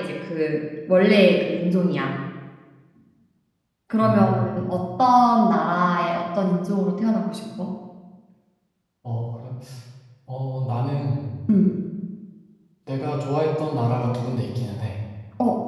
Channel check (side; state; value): both; identical; correlation 1.00